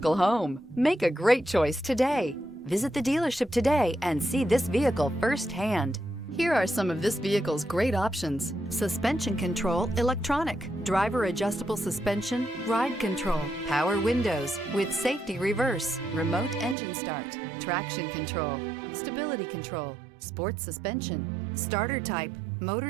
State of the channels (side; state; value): left; drops out; at 16.8 s